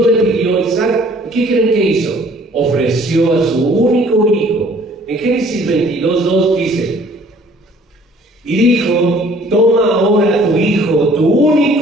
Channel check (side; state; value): both; normal; correlation 0.56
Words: le pidió a Isaac. ¿Qué creen que hizo? Ofreció a su único hijo, En Génesis 22:2 dice: y dijo, toma ahora tu hijo, tu